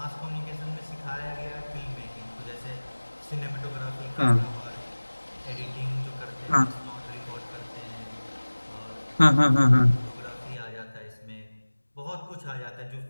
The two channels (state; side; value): inverted; both; correlation -1.00